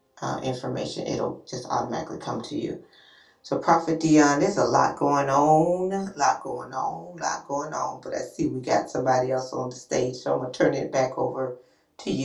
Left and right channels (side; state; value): both; identical; correlation 1.00